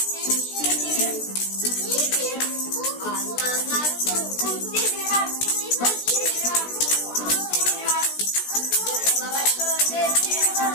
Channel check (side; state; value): right; late; 16 ms